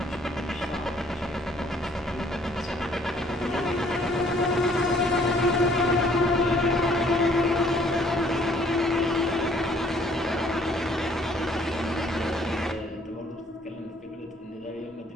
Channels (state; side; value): normal; both; correlation 0.61